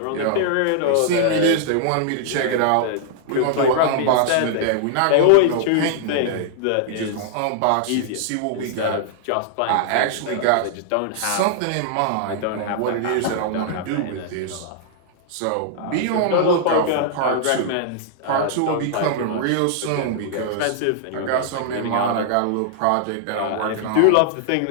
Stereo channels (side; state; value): both; different; correlation -0.01